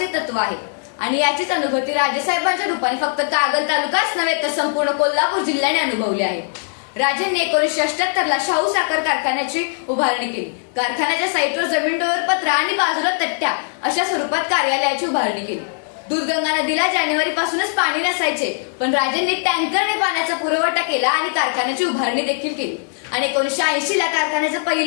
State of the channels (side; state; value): right; silent; digital silence